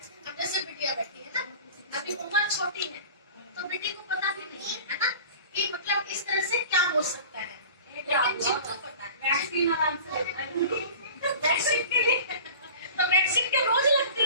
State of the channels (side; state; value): both; inverted; correlation -0.39